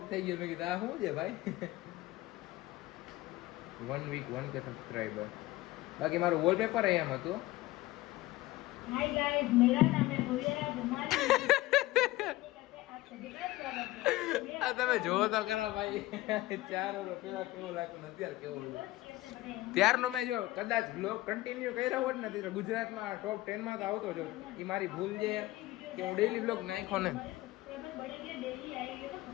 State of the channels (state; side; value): quieter; right; 18.3 dB